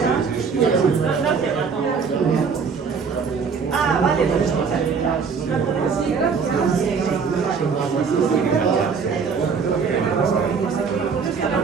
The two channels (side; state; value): left; quieter; 5.7 dB